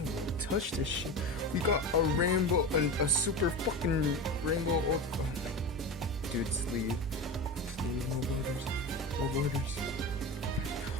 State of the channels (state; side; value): normal; both; correlation 0.26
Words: want to touch this shit. We got a rainbow, a super fucking rainbow. Oh my. Dude, sleeve. Sleeve, no borders. No borders.